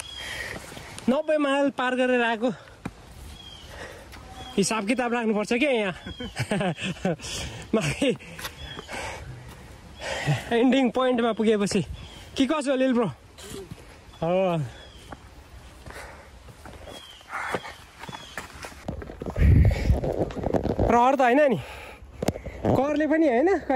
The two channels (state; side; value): identical; both; correlation 1.00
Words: 90 माइल पार गरेर आएको हिसाब किताब राख्नुपर्छ क्या यहाँ एन्डिङ पोइन्टमा पुगेपछि के कसो लिल ब्रो हो रहर त होइन नि करले पनि होइन